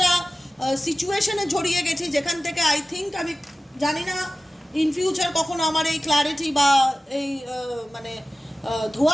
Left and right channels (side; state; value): both; normal; correlation 0.96